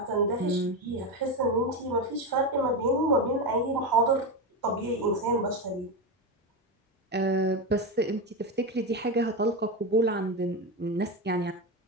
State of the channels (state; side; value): normal; both; correlation 0.15